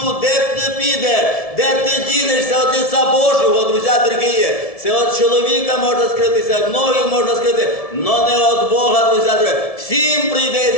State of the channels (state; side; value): late; right; 1.7 ms